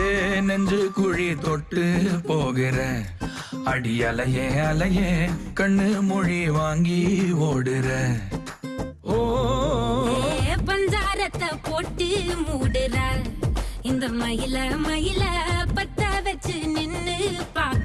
நெஞ்சு குழி தொட்டு போகிற அடி அலையே அலையே கண்ணு மொழி வாங்கி ஓடுற. ஓ பஞ்சாரத்தை போட்டு மூடுற இந்த மயில மயில பத்த வச்சு நின்னு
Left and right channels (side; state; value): both; identical; correlation 1.00